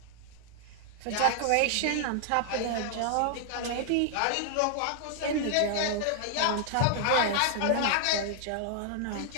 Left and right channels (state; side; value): different; both; correlation -0.01